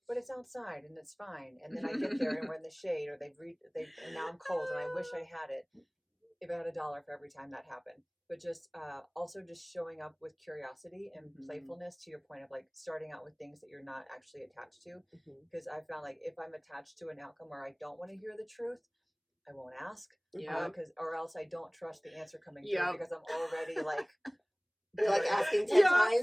but it's outside and it's fine. And then I get there and we're in the shade, or and now I'm cold and I wish I had it. If I had $1 for every time that happened. But just also just showing up with curiosity and playfulness, to your point of like starting out with things that you're not actually attached to. Because I found like if I'm attached to an outcome where I don't want to hear the truth, I won't ask. Or else I don't trust the answer coming through, because I'm already like, you're like asking 10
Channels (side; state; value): both; identical; correlation 1.00